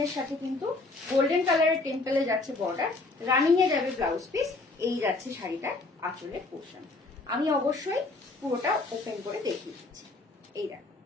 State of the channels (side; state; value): right; quieter; 3.3 dB